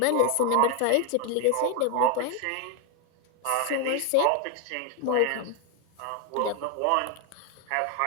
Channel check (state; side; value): different; both; correlation 0.01